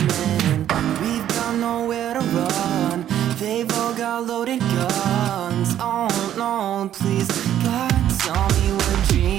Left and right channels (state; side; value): quieter; left; 11.1 dB